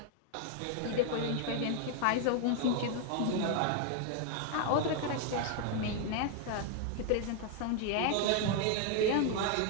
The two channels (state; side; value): different; both; correlation 0.00